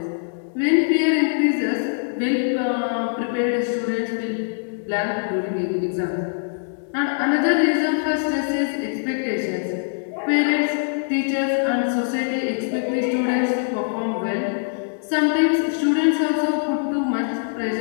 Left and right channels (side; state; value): right; silent; digital silence